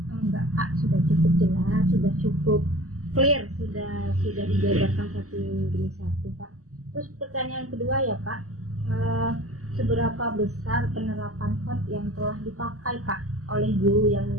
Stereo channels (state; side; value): late; left; 0.65 ms